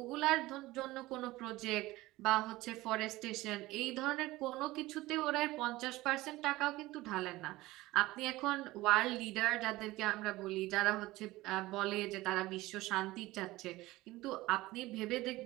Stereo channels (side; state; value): left; quieter; 18.7 dB